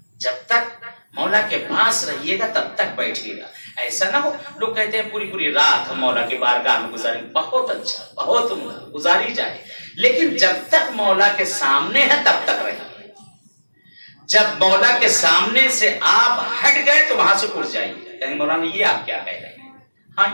جب تک مولا کے پاس رہیے گا تب تک بیٹھیے گا. ایسا نہ ہو لوگ کہتے ہیں پوری رات ہم مولا کے بارگاہ میں گزاریں. بہت اچھا، بہت گزاری جائے، لیکن جب تک مولا کے سامنے ہے تب تک رہیے. جب مولا کے سامنے سے آپ ہٹ گئے تو وہاں سے اٹھ جائیے. کہیں مولانا یہ آپ کیا کہہ رہے ہیں؟ ہاں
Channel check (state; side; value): inverted; both; correlation -1.00